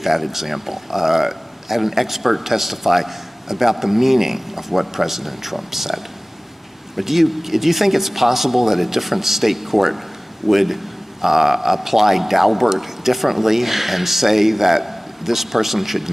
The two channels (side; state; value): both; normal; correlation 0.98